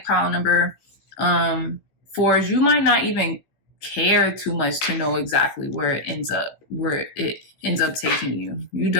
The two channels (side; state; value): right; late; 15 ms